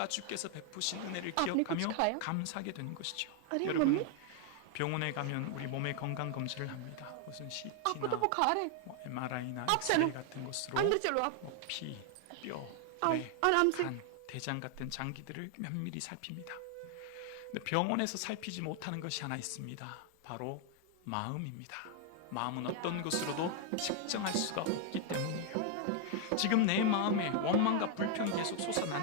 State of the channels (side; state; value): both; different; correlation 0.00